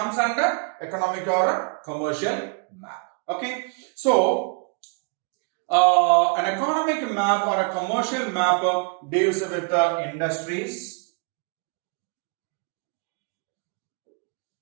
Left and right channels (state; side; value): quieter; left; 36.7 dB